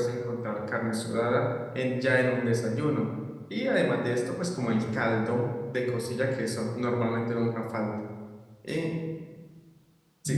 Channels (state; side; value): identical; both; correlation 1.00